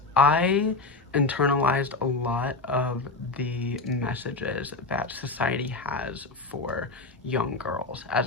I internalized a lot of the messages that society has for young girls as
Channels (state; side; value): quieter; right; 3.6 dB